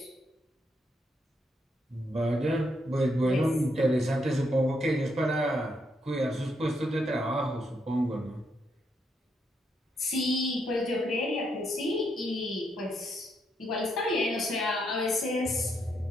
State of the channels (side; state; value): both; normal; correlation 0.77